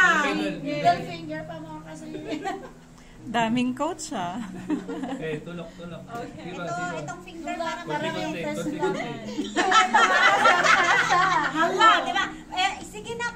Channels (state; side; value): identical; both; correlation 1.00